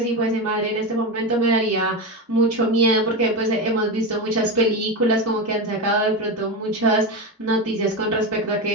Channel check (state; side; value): normal; both; correlation 0.17